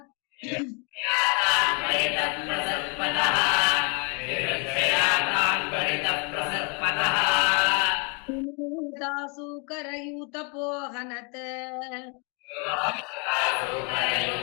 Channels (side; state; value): right; quieter; 34.5 dB